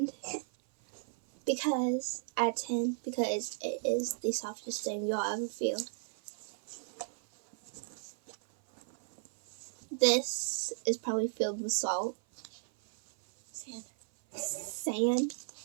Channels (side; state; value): left; silent; 55 dB below the other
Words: because at 10 because it is the softest thing you'll ever feel. This is probably filled with salt. Sand.